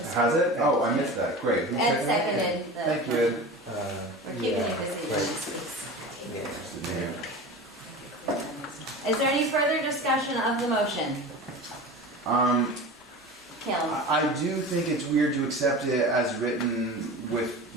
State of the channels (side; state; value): both; normal; correlation 0.33